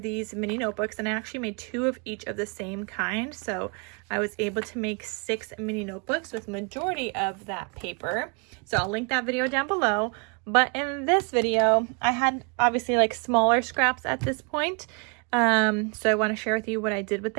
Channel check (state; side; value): quieter; left; 35.2 dB